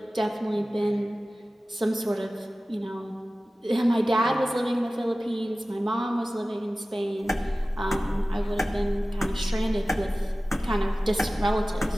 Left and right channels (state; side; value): normal; both; correlation 0.96